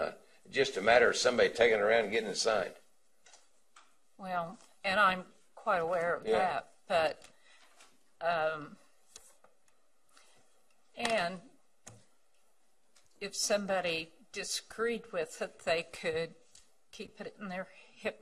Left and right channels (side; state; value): both; identical; correlation 1.00